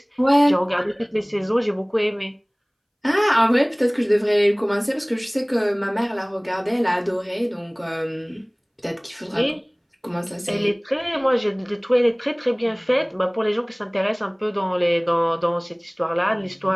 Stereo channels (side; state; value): both; identical; correlation 1.00